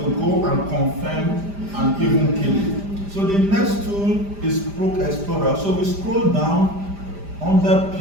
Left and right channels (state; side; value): late; left; 5.0 ms